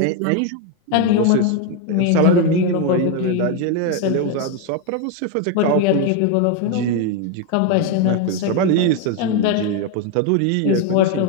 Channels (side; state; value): both; different; correlation 0.02